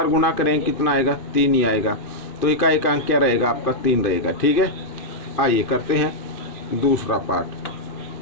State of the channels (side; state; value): right; late; 2.5 ms